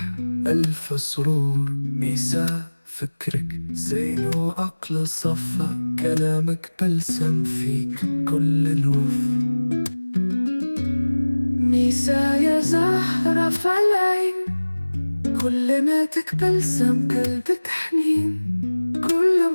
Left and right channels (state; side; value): inverted; both; correlation -1.00